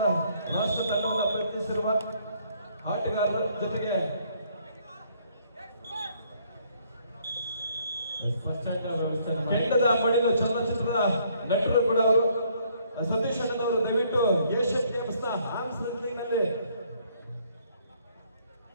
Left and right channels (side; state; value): both; inverted; correlation -0.66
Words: ರಾಷ್ಟ್ರ ತಂಡವನ್ನು ಪ್ರಯತ್ನಿಸಿರುವ ಆಟಗಾರರ ಜೊತೆಗೆ ಕೆಂಡದ ಮಡಿಲು ಚಲನಚಿತ್ರದ ನಟರು ಕೂಡ ಅವರು ಸತೀಶ್ ಅಣ್ಣನವರು ದಯವಿಟ್ಟು ಏಷ್ಯನ್ ಗೇಮ್ಸ್ ನ ಆರ್ಮ್ಸ್ ರೆಸ್ಲಿಂಗ್ ನಲ್ಲಿ